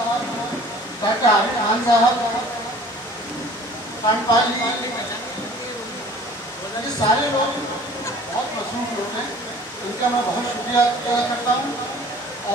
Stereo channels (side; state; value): both; normal; correlation 0.49